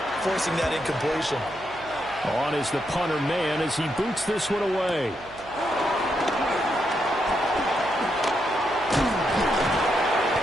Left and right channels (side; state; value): right; noise; hum, 22 dB below the sound